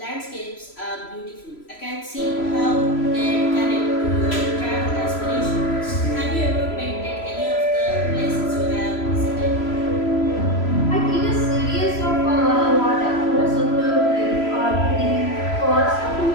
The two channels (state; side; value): late; right; 3.0 ms